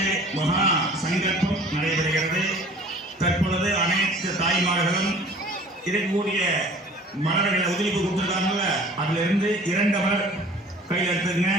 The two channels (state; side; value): normal; both; correlation 0.48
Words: மகா சங்கல்பம் நடைபெறுகிறது. தற்பொழுது அனைத்து தாய்மார்களும் இருக்கக்கூடிய மலர்களை உதிரிப்பு கொடுத்துருக்காங்கல்ல, அதுல இருந்து 2 மலர் கையில் எடுத்துக்கங்க.